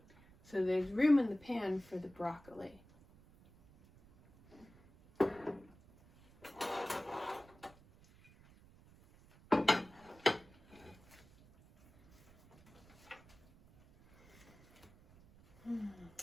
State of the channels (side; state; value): right; noise; rumble, 25 dB below the sound